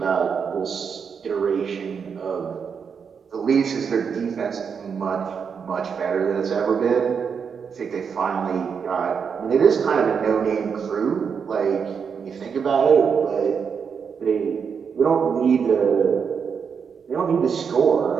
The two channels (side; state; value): left; quieter; 6.5 dB